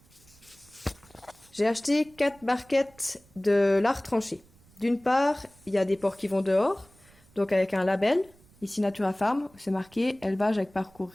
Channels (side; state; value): right; noise; rumble, 28 dB below the sound